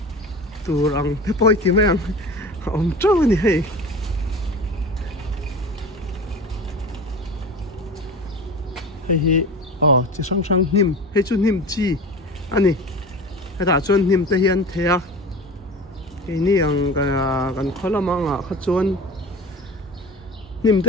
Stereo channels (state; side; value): normal; both; correlation 0.35